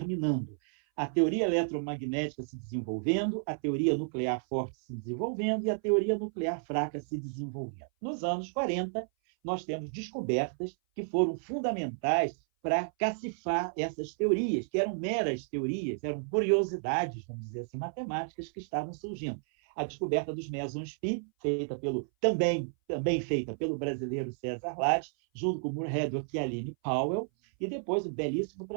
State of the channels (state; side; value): silent; left; 57 dB below the other